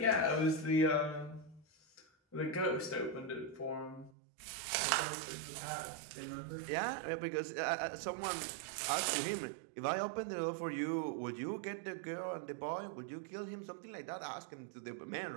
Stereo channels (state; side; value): drops out; left; at 4.1 s